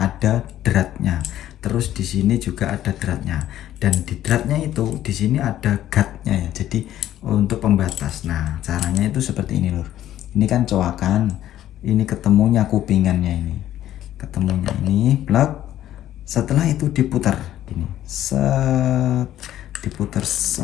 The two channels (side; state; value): right; quieter; 12.5 dB